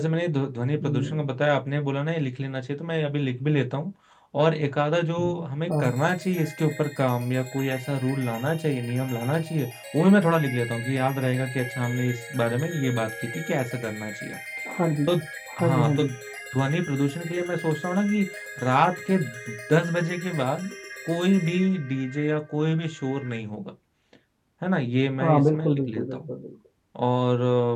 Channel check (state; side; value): identical; both; correlation 1.00